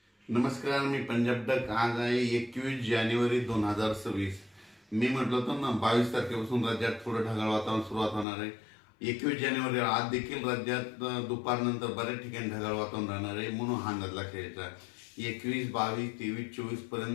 नमस्कार, मी पंजाब डक. आज आहे 21 जानेवारी 2026. मी म्हटलं होतं ना 22 तारखेपासून राज्यात थोडं ढगाळ वातावरण सुरुवात होणार आहे. 21 जानेवारी आज देखील राज्यात दुपारनंतर बऱ्याच ठिकाणी ढगाळ वातावरण राहणार आहे, म्हणून हा अंदाज लक्षात घ्यायचा. 21, 22, 23, 24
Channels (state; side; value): drops out; right; at 8.2 s